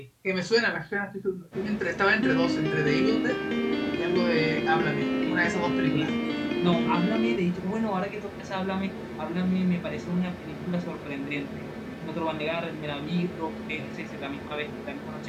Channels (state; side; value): identical; both; correlation 1.00